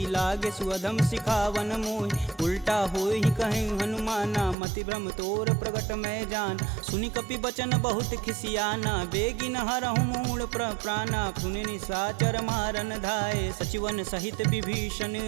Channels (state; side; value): drops out; left; at 4.5 s